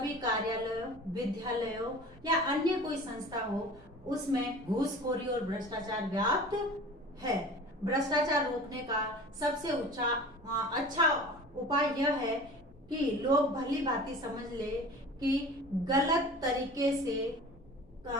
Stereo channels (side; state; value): both; normal; correlation 0.40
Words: कार्यालयों, विद्यालयों या अन्य कोई संस्था हो उसमें घूसखोरी और भ्रष्टाचार व्याप्त है। भ्रष्टाचार रोकने का सबसे अच्छा उपाय यह है कि लोग भली भांति समझ ले कि गलत तरीके से